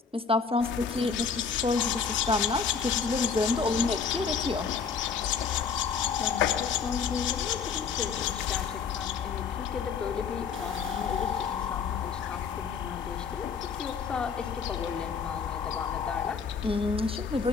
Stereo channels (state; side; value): quieter; right; 6.0 dB